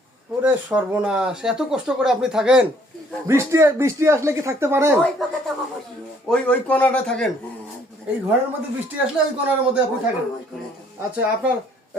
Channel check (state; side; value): normal; both; correlation 0.62